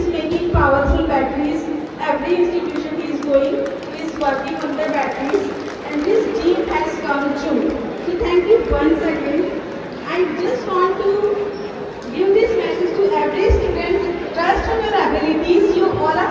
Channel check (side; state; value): both; identical; correlation 1.00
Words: making powerful batteries. Every institution he is going, he is working on the batteries, and his dream has come true. So thank you once again. I just want to give this message to every student: trust on your abilities. You all